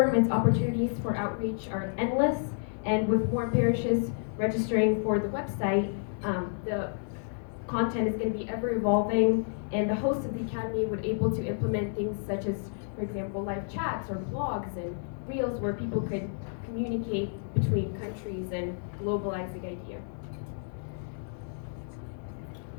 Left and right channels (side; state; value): right; silent; 58 dB below the other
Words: its opportunities for outreach are endless, and with more parishes registering for the website, the content is going to be ever evolving, and the host of the academy would able to implement things such as, for example, live chats or blogs and reels where people could communicate between countries and globalize the idea.